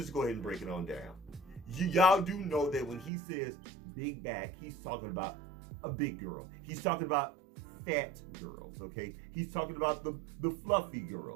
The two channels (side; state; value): left; drops out; at 3.1 s